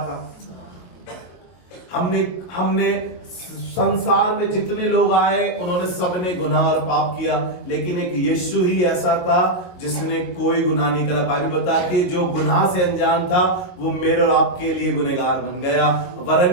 हमने संसार में जितने लोग आए उन्होंने सबने गुनाह और पाप किया, लेकिन एक यीशु ही ऐसा था जिसने कोई गुनाह नहीं करा। बाइबल बताती है जो गुनाह से अनजान था वो मेरे और आपके लिए गुनहगार बन गया,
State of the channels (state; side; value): late; right; 22 ms